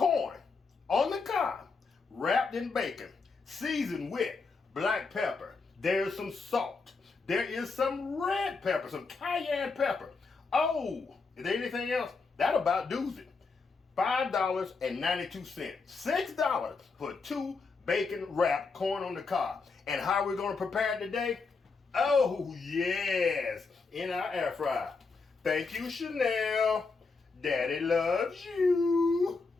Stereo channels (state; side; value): quieter; right; 4.4 dB